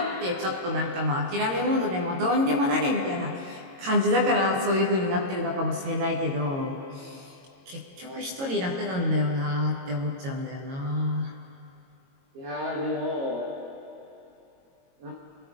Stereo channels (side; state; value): left; late; 22 ms